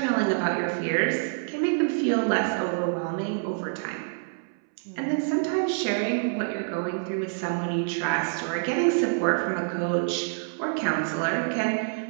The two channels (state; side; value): silent; left; 60 dB below the other